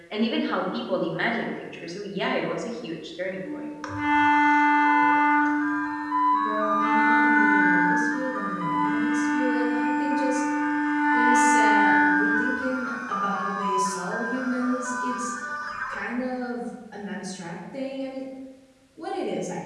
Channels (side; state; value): both; identical; correlation 1.00